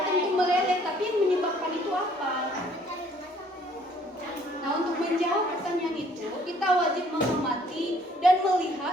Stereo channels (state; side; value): normal; both; correlation 0.61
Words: tentu meleleh. Tapi yang menyebabkan itu apa? Nah, untuk menjawab pertanyaan itu, kita wajib mengamati dan